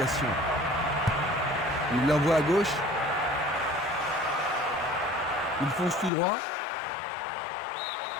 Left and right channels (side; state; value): right; drops out; at 6.1 s